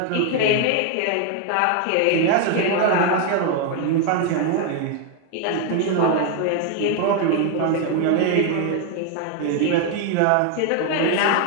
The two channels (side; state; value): both; different; correlation 0.01